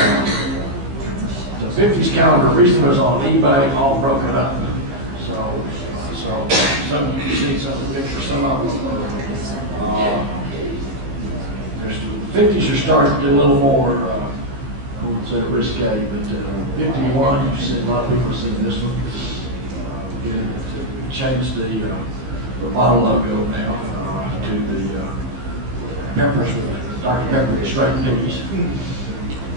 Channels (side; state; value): left; late; 15 ms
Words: The 50s calendar recently was on eBay, all broken up. So some you can see some of the pictures, some of them. The 50s are starting to get a little more, I wouldn't say risque, but 51, you've seen, a lot of people have seen this one. We changed the bottle logo now to the peppers with Dr. Pepper with straight peas.